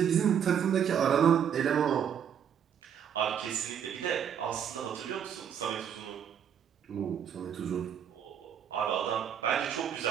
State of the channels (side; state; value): left; quieter; 8.5 dB